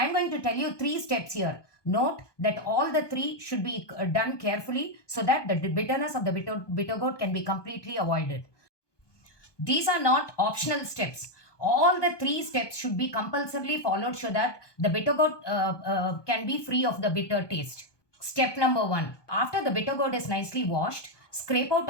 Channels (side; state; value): right; late; 1.2 ms